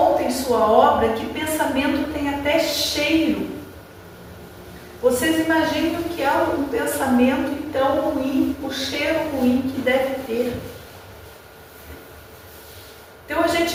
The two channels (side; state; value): both; identical; correlation 1.00